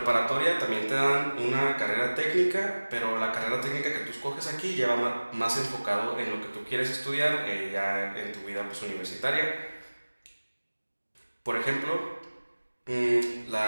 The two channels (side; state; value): both; inverted; correlation -1.00